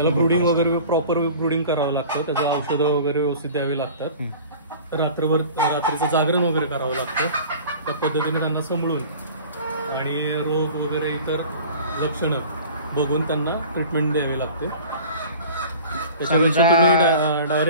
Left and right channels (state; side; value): inverted; both; correlation -0.42